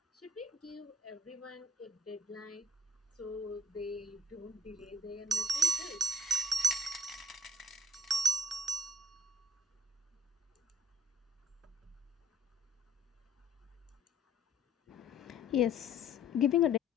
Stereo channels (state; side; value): normal; both; correlation 0.63